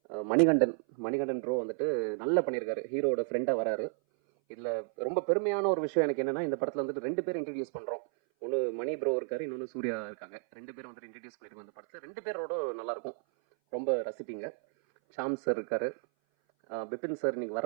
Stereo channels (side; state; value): left; silent; 56 dB below the other